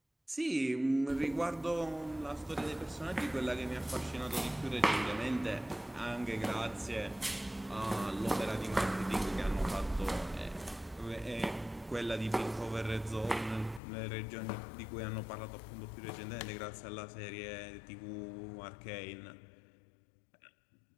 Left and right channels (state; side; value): drops out; right; at 13.8 s